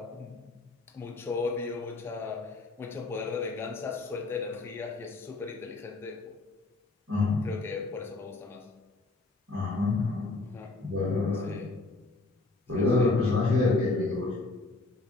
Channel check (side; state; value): right; quieter; 3.2 dB